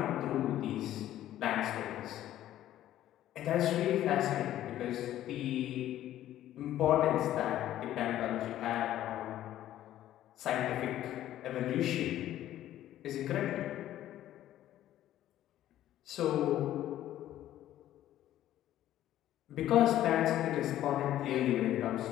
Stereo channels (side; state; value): right; quieter; 12.9 dB